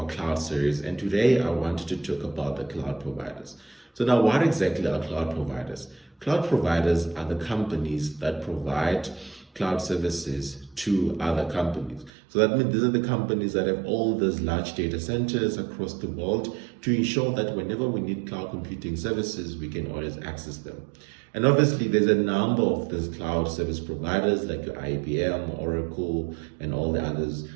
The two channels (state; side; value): drops out; left; at 12.1 s